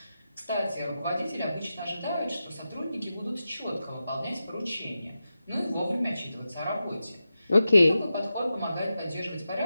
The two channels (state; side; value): inverted; both; correlation -0.91